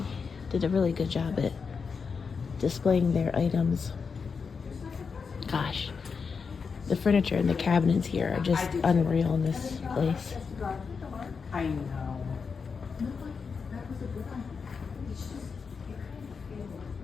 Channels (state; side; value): quieter; right; 5.5 dB